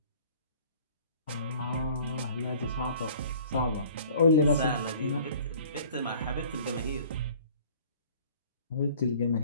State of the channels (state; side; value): inverted; both; correlation -0.50